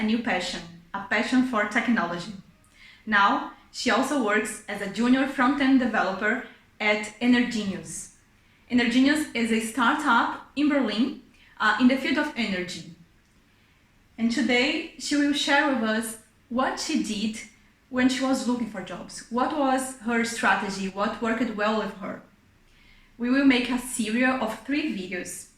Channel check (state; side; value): identical; both; correlation 1.00